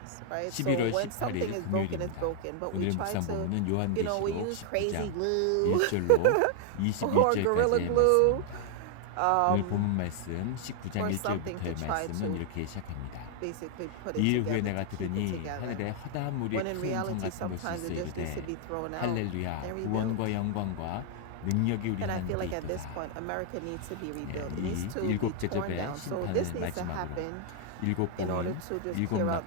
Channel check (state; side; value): different; both; correlation 0.00